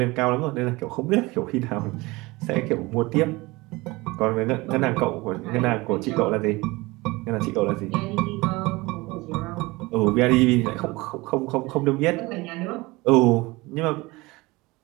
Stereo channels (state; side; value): quieter; left; 22.3 dB